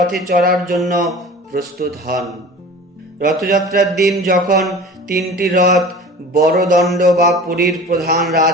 চড়ার জন্য প্রস্তুত হন। রথযাত্রার দিন যখন 3টি রথ বড়দণ্ড বা পুরীর প্রধান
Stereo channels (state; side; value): normal; both; correlation 0.39